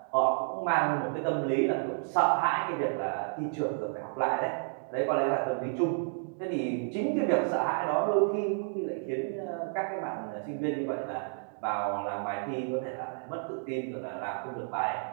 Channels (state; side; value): silent; left; digital silence